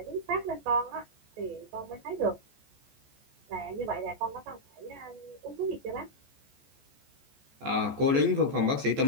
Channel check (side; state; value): left; late; 14 ms